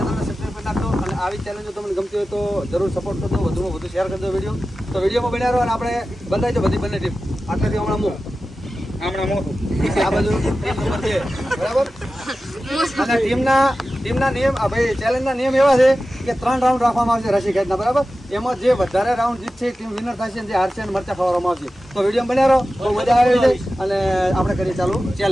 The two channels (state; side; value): normal; both; correlation 0.94